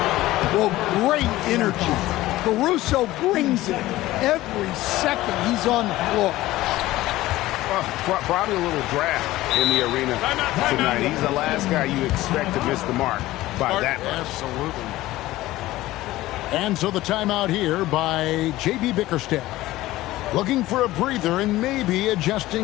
Well, great energy. Caruso brings it every second he's on the floor. Well, probably a little draft in the arena tonight. He's the last guy you expect to miss the mark by that much. Absolutely. And so the timeout here by J.B. Bickerstaff. Looking for a breather and maybe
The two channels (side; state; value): right; quieter; 16.8 dB